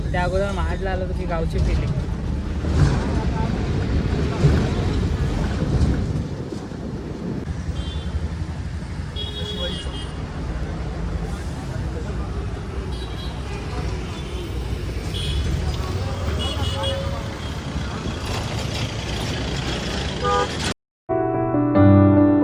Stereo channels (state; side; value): identical; both; correlation 1.00